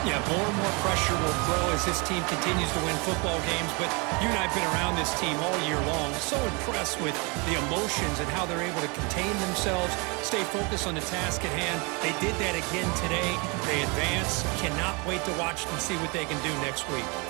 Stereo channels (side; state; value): left; quieter; 30.0 dB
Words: Yeah, more and more pressure will grow as this team continues to win football games. But you and I have been around this team all year long. So impressed with the emotions and how they're able to contain themselves, stay focused on the task at hand. They did that again today. They advance. Cannot wait to watch and see what they can do next week.